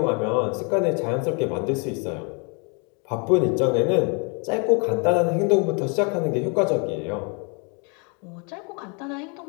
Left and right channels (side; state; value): right; quieter; 35.2 dB